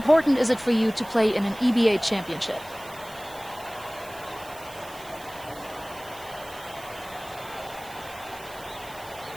is it for you to play in an EBA championship?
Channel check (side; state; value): right; noise; hiss, 18 dB below the sound